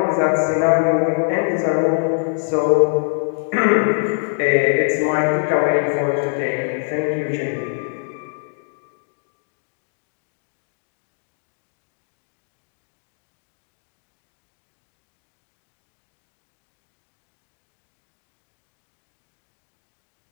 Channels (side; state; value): right; silent; digital silence